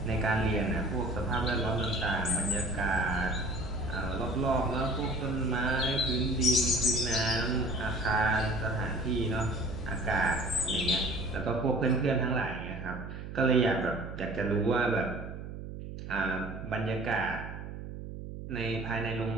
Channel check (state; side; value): noise; right; hum, 9 dB below the sound